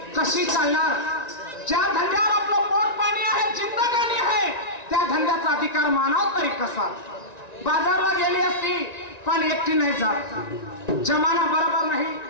कशी चालणार ज्या धंद्यावर आपलं पोट पाणी आहे जिंदगानी आहे त्या धंद्याचा अधिकार मानाव तरी कसा बाजारला गेली असती पण एकटी नाही जात जमाना बरोबर नाही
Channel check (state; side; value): late; right; 1.9 ms